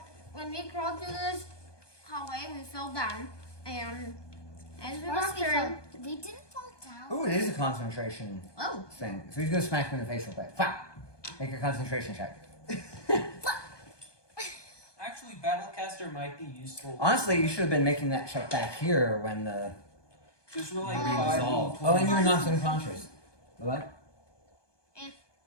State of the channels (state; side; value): late; right; 1.2 ms